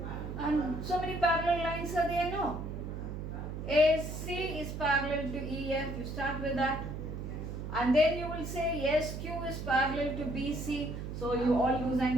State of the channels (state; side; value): noise; right; hum, 6 dB below the sound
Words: and so many parallel lines are there, no? AC is parallel to EF, you start with that. And then you will say SQ is parallel to BC, so you all those